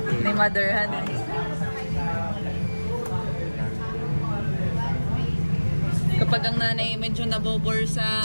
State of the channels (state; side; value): inverted; both; correlation -1.00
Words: Ni Mother Han. Kapag ang nanay medyo nabobor sa